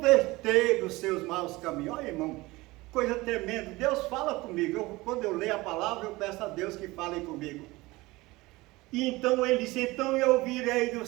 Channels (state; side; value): quieter; left; 21.0 dB